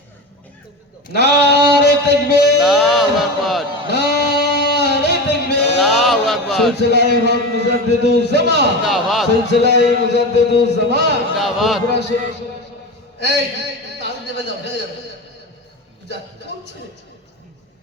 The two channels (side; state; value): both; normal; correlation 0.25